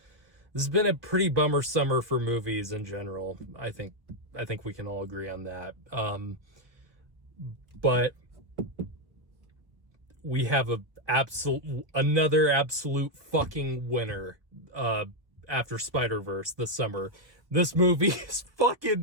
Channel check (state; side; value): late; left; 1.0 ms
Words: This has been a pretty bummer summer for movies in general. I think we can all agree on that. But we have another absolute fucking winner after Spider-Verse this summer. This movie is